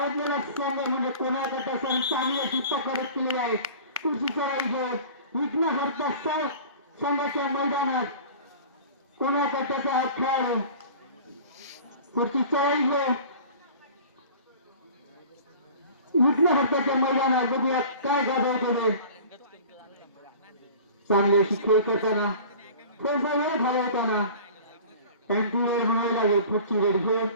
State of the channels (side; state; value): both; inverted; correlation -0.42